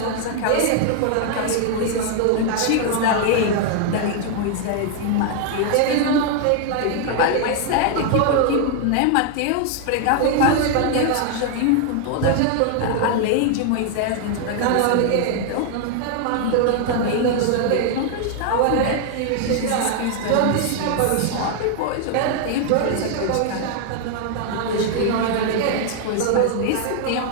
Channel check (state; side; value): different; both; correlation 0.00